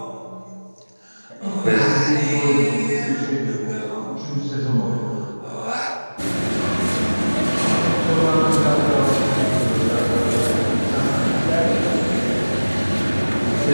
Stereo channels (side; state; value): both; inverted; correlation -1.00